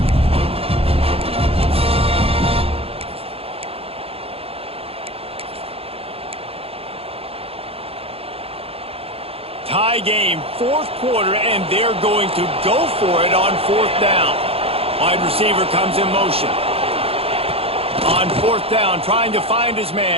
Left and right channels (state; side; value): late; left; 0.28 ms